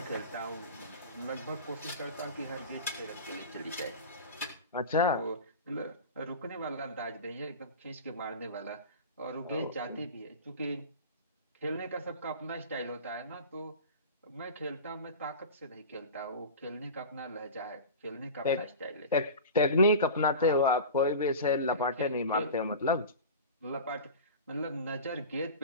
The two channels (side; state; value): both; inverted; correlation -0.32